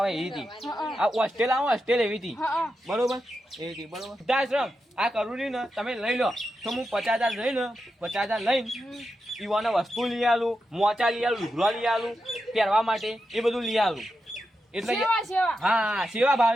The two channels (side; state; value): both; normal; correlation 0.88